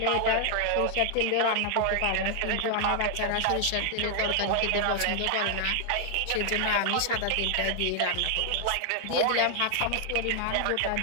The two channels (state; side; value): different; both; correlation 0.00